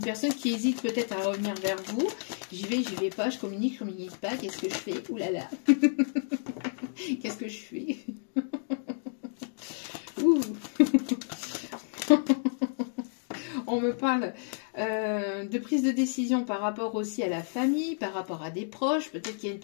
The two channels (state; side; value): silent; right; digital silence